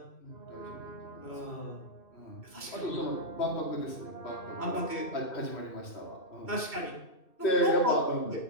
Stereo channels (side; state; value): right; late; 2.6 ms